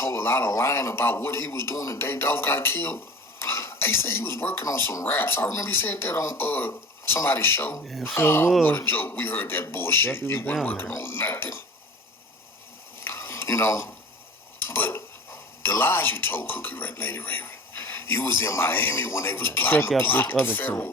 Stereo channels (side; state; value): both; normal; correlation 0.39